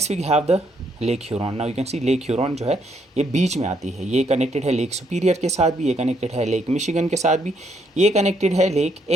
we have the Lake Huron. Now you can see Lake Huron जो है ये बीच में आती है, ये कनेक्टेड है लेक सुपीरियर के साथ भी, ये कनेक्टेड है लेक मिशिगन के साथ भी, ये कनेक्टेड है लेक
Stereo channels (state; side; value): normal; both; correlation 0.73